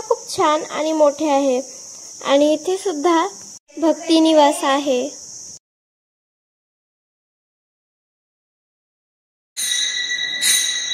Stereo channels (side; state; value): both; identical; correlation 1.00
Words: खूप छान आणि मोठे आहे आणि इथे सुद्धा भक्ती निवास आहे.